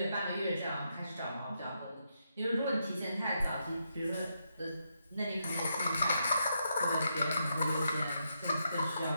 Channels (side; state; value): both; inverted; correlation -0.81